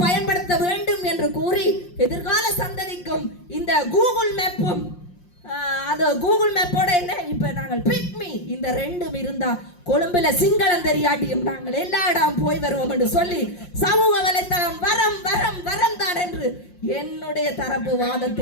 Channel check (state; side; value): late; right; 5.6 ms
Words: பயன்படுத்த வேண்டும் என்று கூறி எதிர்கால சந்ததிக்கும் இந்த கூகுள் மேப்பும் அது கூகுள் மேப்போட என்ன இப்ப நாங்கள் பிக்மி இந்த 2 இருந்தா கொழும்புல சிங்களம் தெரியாட்டியும் நாங்கள் எல்லா இடம் போய் வருவோம் என்று சொல்லி சமூக வலைத்தளம் வரம் வரம் வரம் தான் என்று என்னுடைய தரப்பு